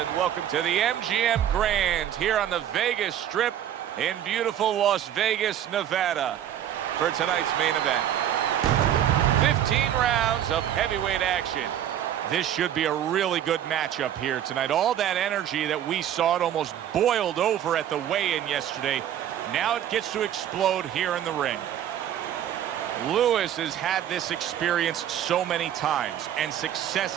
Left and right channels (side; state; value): left; quieter; 10.6 dB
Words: welcome to the MGM Grand here on the Vegas Strip in beautiful Las Vegas, Nevada for tonight's main event. 15 rounds of heavyweight action. This should be a really good matchup here tonight. All that energy that we saw, it almost boiled over at the weigh-in yesterday. Now it gets to explode here in the ring. Lewis has had this experience so many times, and